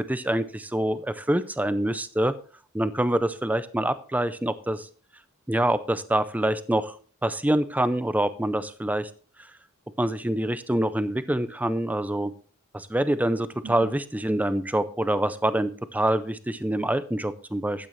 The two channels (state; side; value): normal; both; correlation 0.89